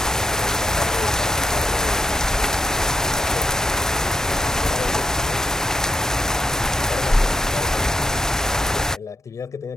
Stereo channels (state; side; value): normal; both; correlation 0.82